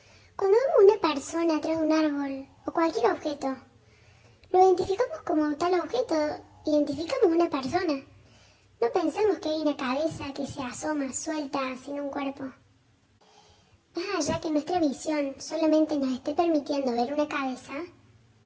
Cuando vemos una persona atrás de un árbol o cualquier objeto, lo identificamos como tal objeto, identificamos una persona. No pensamos que hay una cabeza que se asoma suelta sin un cuerpo. Más allá que nuestra visión solamente nos esté permitiendo ver una cabeza,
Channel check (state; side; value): identical; both; correlation 1.00